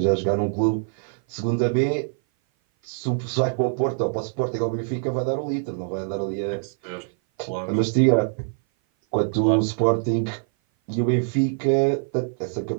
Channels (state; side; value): silent; left; 57 dB below the other